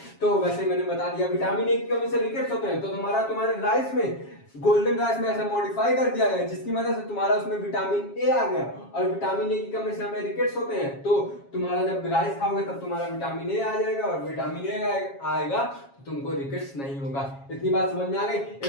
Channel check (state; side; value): late; right; 7.3 ms